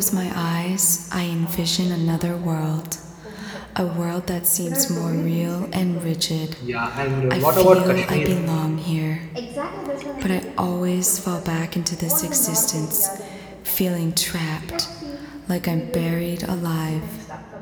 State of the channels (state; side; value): identical; both; correlation 1.00